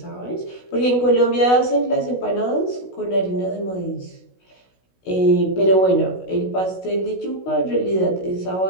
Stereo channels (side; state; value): right; late; 16 ms